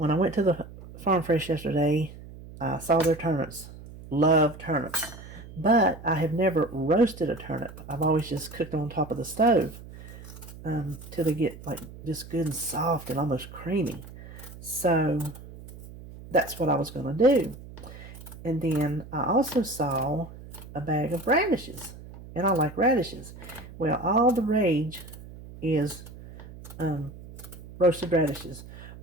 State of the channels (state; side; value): noise; right; hum, 16 dB below the sound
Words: I went to the Farm Fresh yesterday, I saw their turnips. Love turnips. But I have never roasted a turnip. I've always just cooked them on top of the stove till they get like just good and soft and almost creamy. So that's what I was going to do. And then I also saw a bag of radishes. And I like radishes. Well, all the rage is roasted radishes.